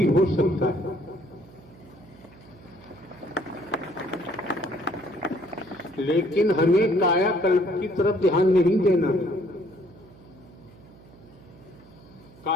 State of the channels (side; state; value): right; noise; hum, 23 dB below the sound